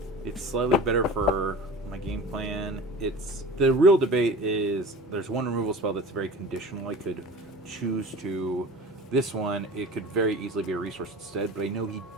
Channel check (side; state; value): both; normal; correlation 0.38